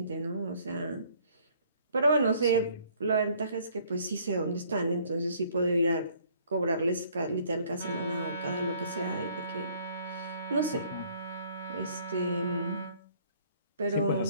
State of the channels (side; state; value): both; inverted; correlation -0.60